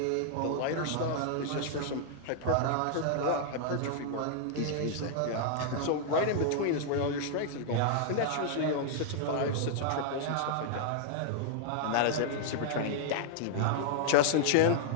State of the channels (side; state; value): both; different; correlation -0.01